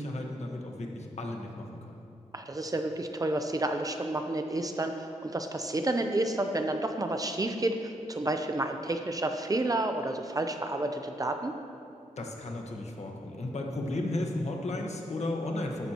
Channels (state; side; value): normal; both; correlation 0.74